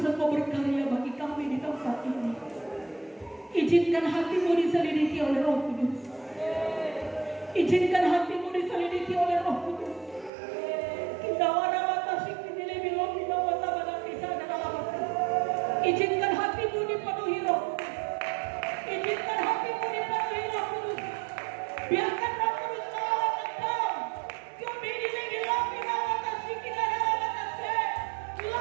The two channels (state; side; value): drops out; left; at 10.3 s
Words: Engkau berkarya bagi kami di tempat ini. Izinkan hatimu diselidiki oleh Roh Kudus. Izinkan hatimu diselidiki oleh Roh Kudus. Kita wana batasi kini lebih lebih bawah tabah kisah dan alamat. Izinkan hatimu dipenuhi Roh Kudus. Izinkan hatimu dipenuhi Roh Kudus. Biarkan Roh Kudus melawat engkau. Kami ini lebih lebih bawah batasi kita dan alamat.